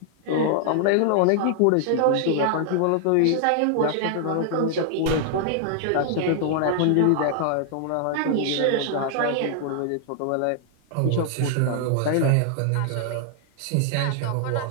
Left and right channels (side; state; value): both; different; correlation 0.00